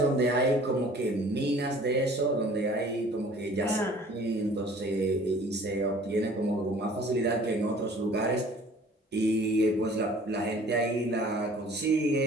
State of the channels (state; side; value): normal; both; correlation 0.51